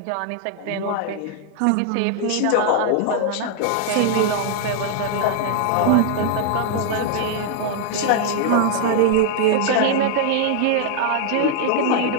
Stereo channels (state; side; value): different; both; correlation 0.00